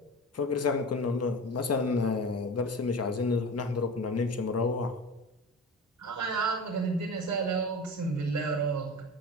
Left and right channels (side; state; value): both; normal; correlation 0.32